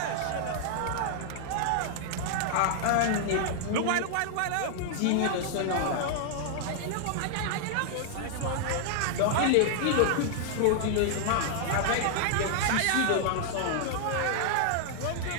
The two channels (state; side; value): different; both; correlation -0.01